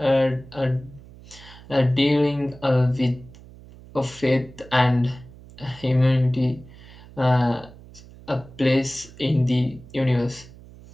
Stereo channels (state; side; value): noise; right; hum, 20 dB below the sound